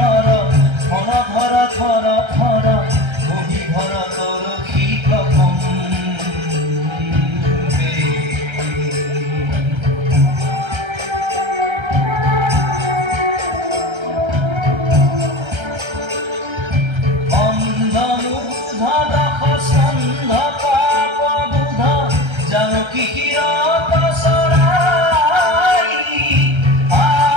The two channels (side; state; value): left; late; 1.3 ms